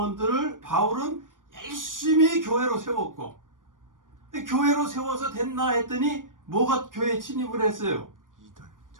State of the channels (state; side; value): late; left; 0.88 ms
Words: 바울은 열심히 교회로 세웠고 교회로 세워서 됐나 했더니 뭐가 교회에 침입을 했어요?